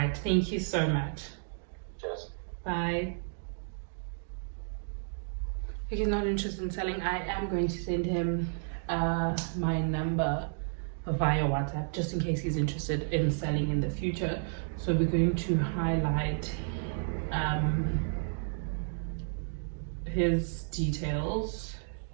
thank you so much. Cheers. Bye. If he's not interested in selling, I am going to send him my number via WhatsApp, just in case he's interested in selling in the future. So we're going to highlight his details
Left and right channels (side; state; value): left; silent; digital silence